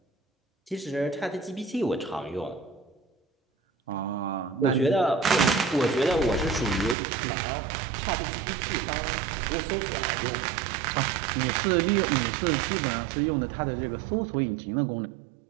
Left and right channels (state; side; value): drops out; left; at 7.0 s